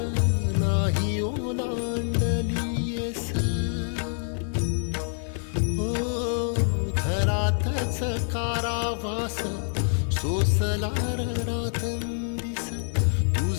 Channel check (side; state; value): right; silent; 61 dB below the other